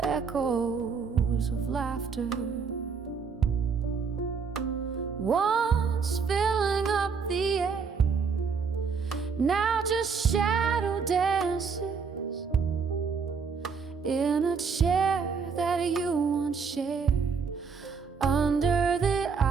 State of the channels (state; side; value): quieter; left; 5.6 dB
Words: of laughter, once filling up the air, now just shadow dances in a chair that you once shared under the